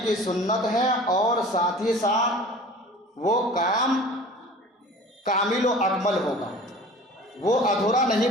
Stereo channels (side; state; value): both; normal; correlation 0.42